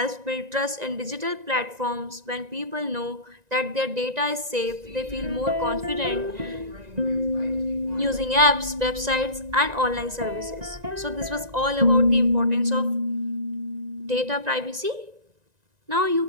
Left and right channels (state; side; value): late; left; 1.9 ms